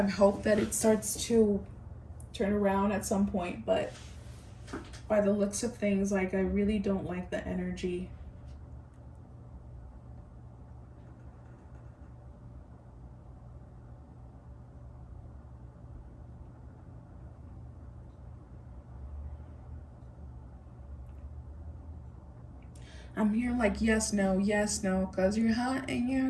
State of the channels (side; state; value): both; identical; correlation 1.00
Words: hope that it starts to turn around at some point, but by the looks of things, like I really don't like the energy. I'm here like yes, no, because you're hot and